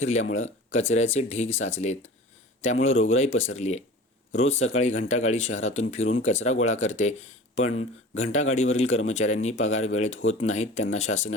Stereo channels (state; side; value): normal; both; correlation 0.39